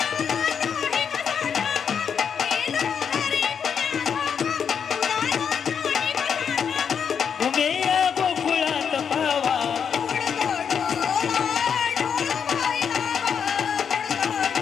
उमेया गोकुळात पावा.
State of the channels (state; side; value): quieter; right; 7.2 dB